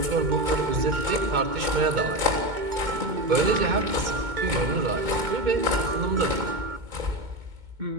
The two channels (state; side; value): late; left; 2.2 ms